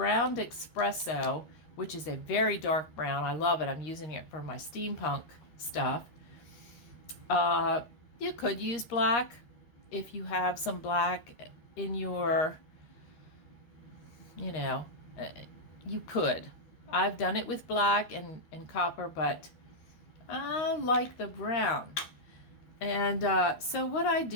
espresso, which is a very dark brown. I love it. I'm using it for my steampunk stuff. You could use black if you have some black in your, you know, you could. I've done it with black and copper, but I like the brown. And so what I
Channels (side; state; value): right; late; 13 ms